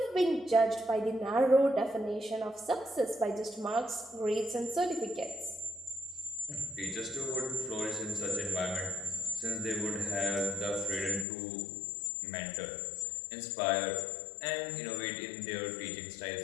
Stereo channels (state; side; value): drops out; right; at 11.2 s